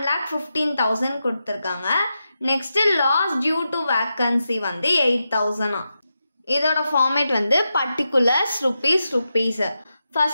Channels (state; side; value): inverted; both; correlation -0.89